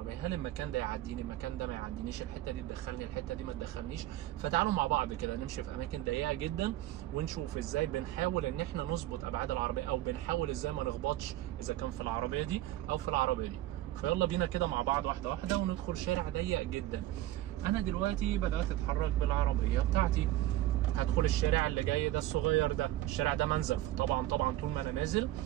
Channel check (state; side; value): quieter; left; 14.5 dB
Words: هل المكان ده يعديني، المكان ده ما يعدينيش، الحته دي تدخلني، الحته دي ما تدخلنيش. فتعالوا مع بعض كده نمشي في اماكن ضيقه جدا ونشوف ازاي بنحاول ان احنا نظبط ابعاد العربيه، او بنحاول ازاي ما نخبطش اذا كان في العربيه دي او في العربيه دي. فيلا بينا كده مع بعض واحده واحده وندخل شارع ضيق جدا. انا دلوقتي بدات اتحرك بالعربيه بتاعتي، هدخل الشارع اللي جاي ده الصغير ده، الشارع ده منزف. طبعا طول ما انا نازل